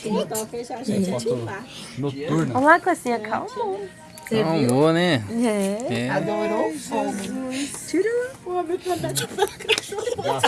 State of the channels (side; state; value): both; identical; correlation 1.00